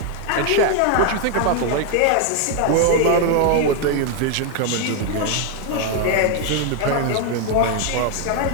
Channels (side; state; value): both; different; correlation 0.01